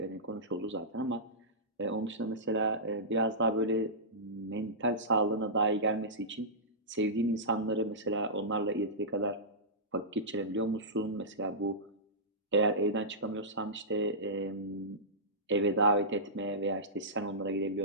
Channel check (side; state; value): both; normal; correlation -0.17